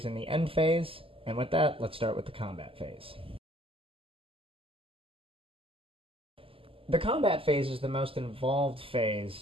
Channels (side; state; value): left; late; 0.26 ms